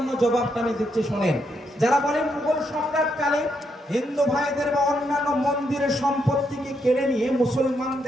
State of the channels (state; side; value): normal; both; correlation 0.78